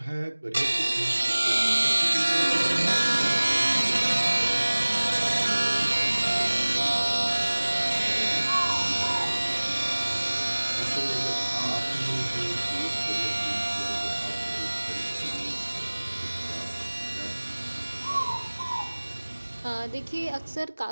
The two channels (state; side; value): inverted; both; correlation -1.00